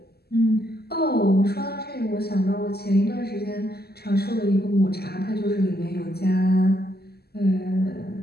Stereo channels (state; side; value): late; right; 0.46 ms